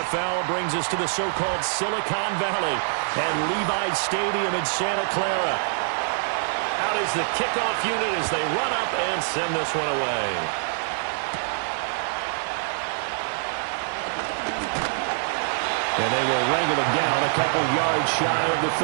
brings us to the so-called Silicon Valley and Levi Stadium in Santa Clara. Out is the kickoff unit as they run up and send this one away. And they will wrangle him down a couple yards shy of the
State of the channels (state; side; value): silent; left; digital silence